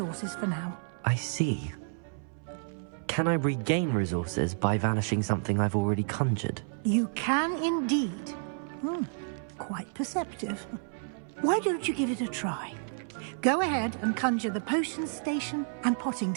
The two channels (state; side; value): silent; left; 58 dB below the other